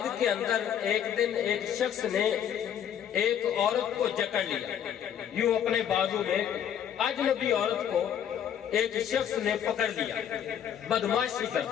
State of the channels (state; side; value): quieter; right; 9.4 dB